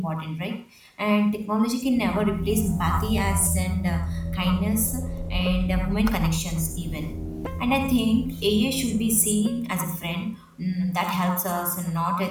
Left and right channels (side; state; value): both; identical; correlation 1.00